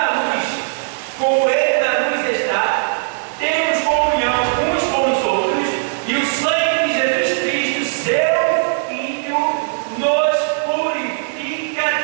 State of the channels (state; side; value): silent; left; 63 dB below the other